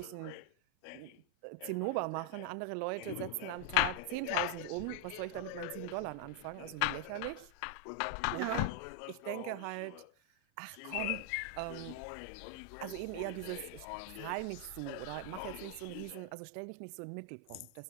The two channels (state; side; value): different; both; correlation 0.00